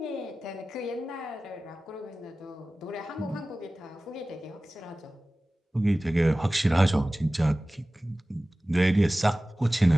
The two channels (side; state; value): both; normal; correlation 0.97